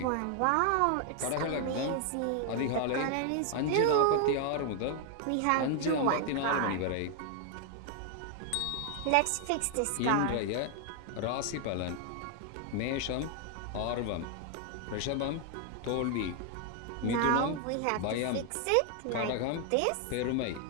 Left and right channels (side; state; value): both; different; correlation 0.00